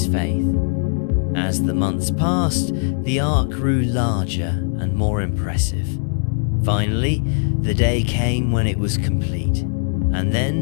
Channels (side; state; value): right; silent; 66 dB below the other